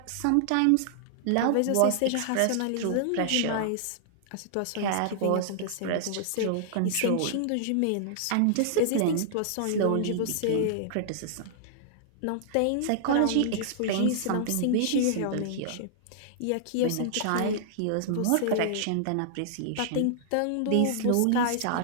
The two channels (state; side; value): different; both; correlation -0.01